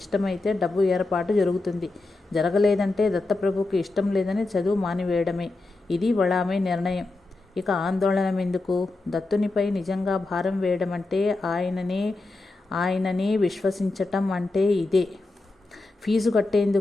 ఇష్టమైతే డబ్బు ఏర్పాటు జరుగుతుంది. జరగలేదంటే దత్తప్రభుకి ఇష్టం లేదని చదువు మానివేయడమే. ఇది వళామే నిర్ణయం. ఇక ఆందోళన ఎందుకు? దత్తునిపై నిజంగా భారం వేయడం అంటే ఆయననే విశ్వసించటం అంటే ఇదే. ఫీజు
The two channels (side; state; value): right; quieter; 3.2 dB